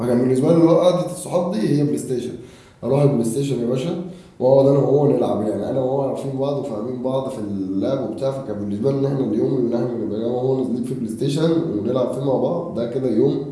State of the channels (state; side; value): identical; both; correlation 1.00